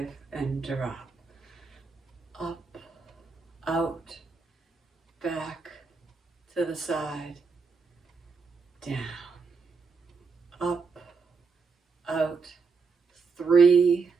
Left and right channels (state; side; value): quieter; left; 4.9 dB